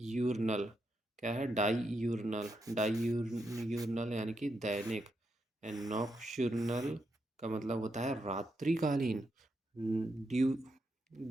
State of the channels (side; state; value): both; normal; correlation 0.83